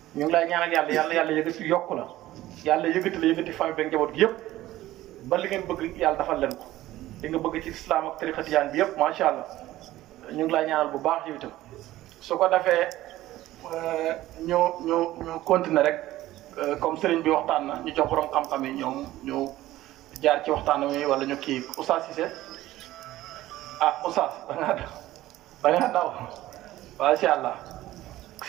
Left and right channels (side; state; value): left; quieter; 15.6 dB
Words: ñu ngi lay ñaanal yàlla yëgati yokk la yàlla yëgati famille beeg njaboot gi yëpp ba li ngeen bëgg yàlla defal leen ko li nga bëgg ci islam ak tariqa tijaan bi yëpp macha allah ñu ngi lay ñaanal bu baax yow itam su ko defee ñu continuer rek comme sëriñ bi waxtaan na ñu jox borom xam-xam yi ñoom ñu jaar ci waxtaan wi wala ñu kii Oustaz Cissé Oustaz da ngaa daw macha allah